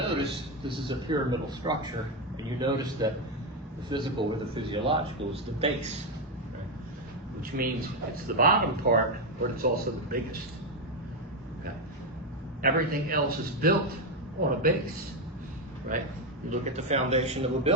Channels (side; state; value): both; normal; correlation 0.07